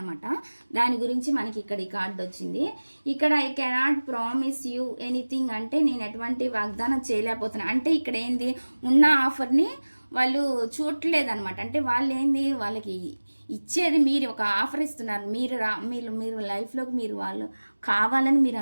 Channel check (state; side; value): inverted; both; correlation -1.00